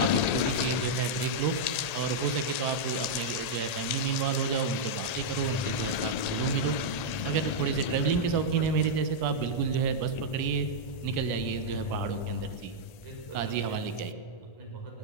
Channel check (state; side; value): late; right; 1.9 ms